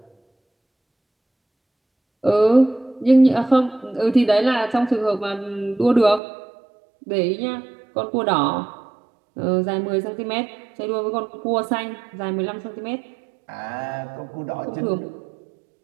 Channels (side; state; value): left; drops out; at 6.2 s